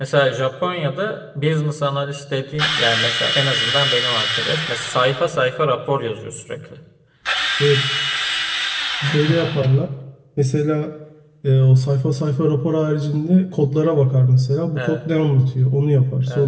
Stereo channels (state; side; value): identical; both; correlation 1.00